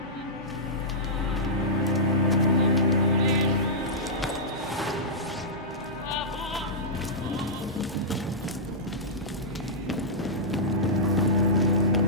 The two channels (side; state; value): both; normal; correlation -0.14